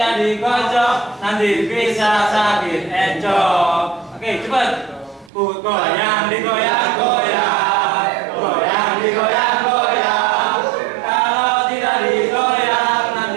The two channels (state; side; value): drops out; left; at 5.3 s